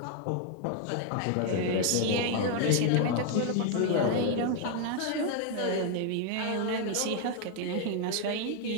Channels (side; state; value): both; different; correlation 0.00